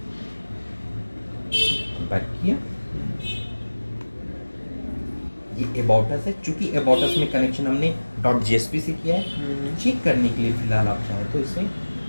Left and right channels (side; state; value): both; inverted; correlation -1.00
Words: बैक किया। ये अबाउट अस है, चूंकि अबाउट अस में कनेक्शन हमने .jsp से किया है। चेक करने के लिए फिलहाल आप चाहें तो इसे